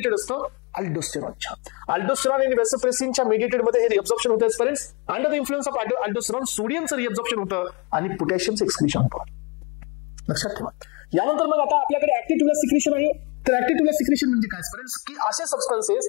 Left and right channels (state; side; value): quieter; right; 30.6 dB